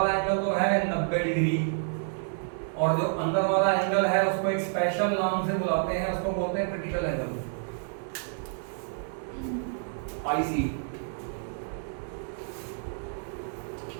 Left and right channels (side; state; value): left; silent; 59 dB below the other